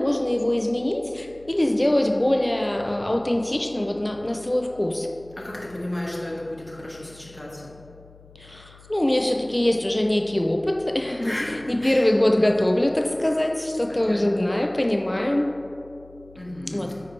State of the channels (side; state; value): left; noise; hum, 24 dB below the sound